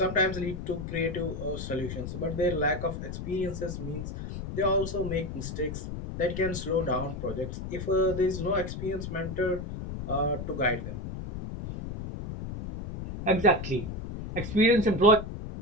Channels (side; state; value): left; noise; rumble, 7 dB below the sound